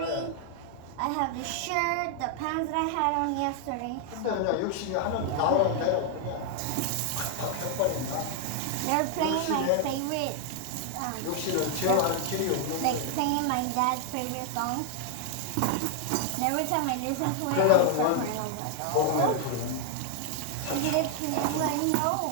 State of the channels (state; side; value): different; both; correlation 0.00